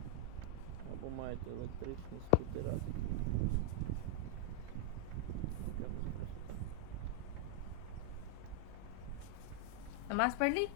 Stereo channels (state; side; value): different; both; correlation 0.00